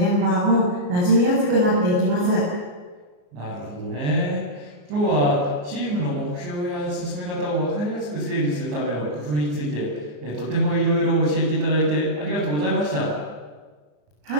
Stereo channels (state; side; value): late; left; 34 ms